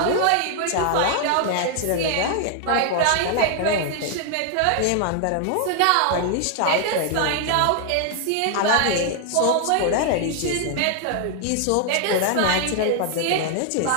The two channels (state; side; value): different; both; correlation 0.00